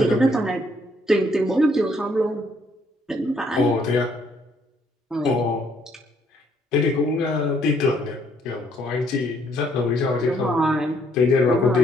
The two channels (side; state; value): both; normal; correlation 0.67